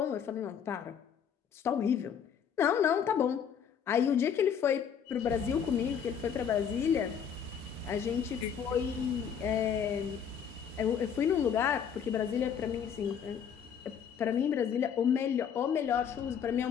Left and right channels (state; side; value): quieter; right; 7.8 dB